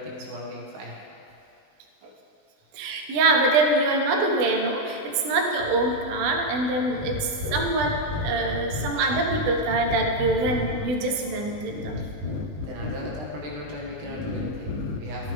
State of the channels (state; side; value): late; left; 20 ms